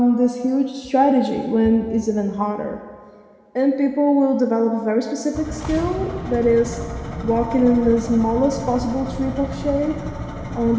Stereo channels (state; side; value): identical; both; correlation 1.00